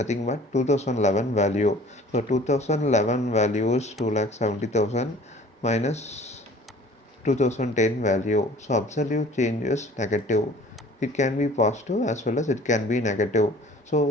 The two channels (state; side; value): normal; both; correlation 0.49